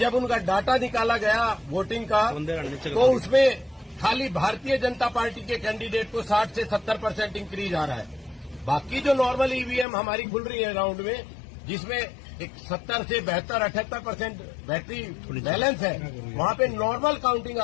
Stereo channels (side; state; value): right; drops out; at 9.9 s